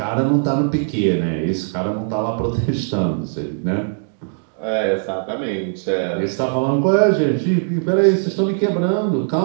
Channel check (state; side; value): silent; left; digital silence